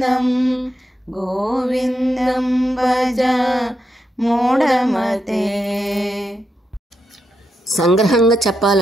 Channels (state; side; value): normal; both; correlation 0.85